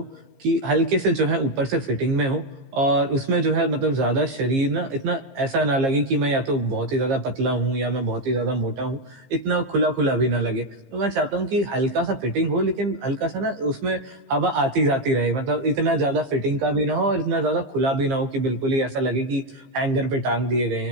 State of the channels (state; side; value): late; left; 15 ms